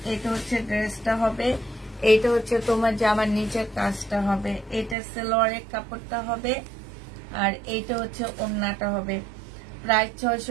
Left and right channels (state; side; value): drops out; left; at 5.0 s